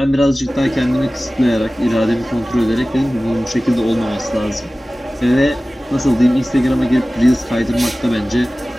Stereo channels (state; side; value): normal; both; correlation 0.97